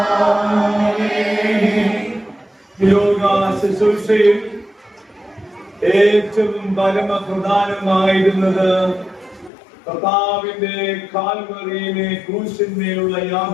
യോഗ ശുശ്രൂഷയിൽ ഏറ്റവും പരമപ്രധാനമായിരുന്നത് കർത്താവിന്റെ കാൽവറിയിലെ ക്രൂശിന്മേലുള്ള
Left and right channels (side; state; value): right; drops out; at 9.5 s